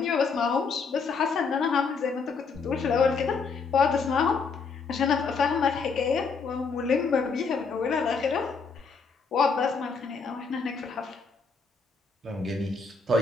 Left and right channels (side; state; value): right; quieter; 5.0 dB